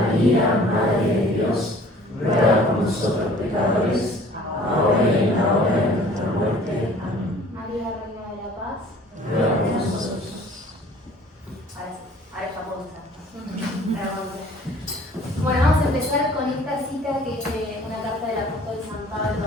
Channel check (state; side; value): normal; both; correlation 0.52